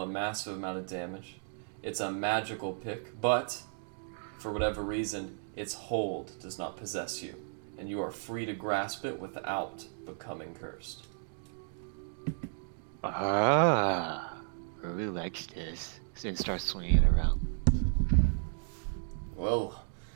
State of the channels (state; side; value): silent; left; digital silence